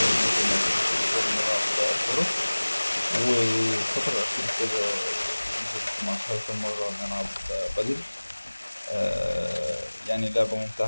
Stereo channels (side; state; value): both; inverted; correlation -1.00